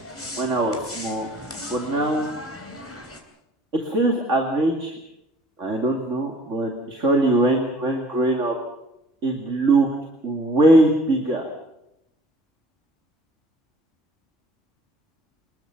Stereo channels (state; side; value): normal; both; correlation 0.52